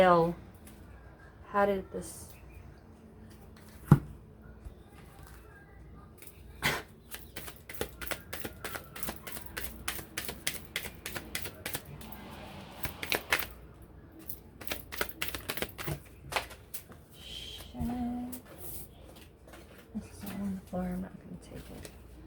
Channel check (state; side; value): identical; both; correlation 1.00